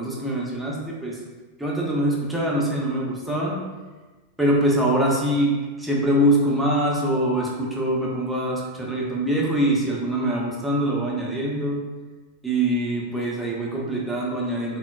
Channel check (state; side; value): normal; both; correlation 0.12